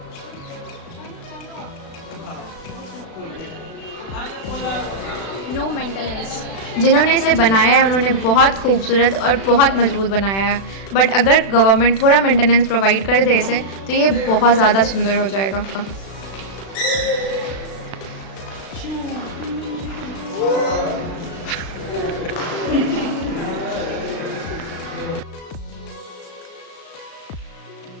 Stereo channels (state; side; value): late; right; 36 ms